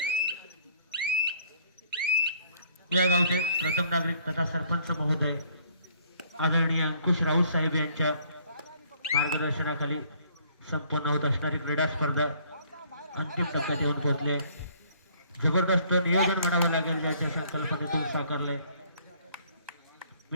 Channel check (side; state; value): both; inverted; correlation -0.61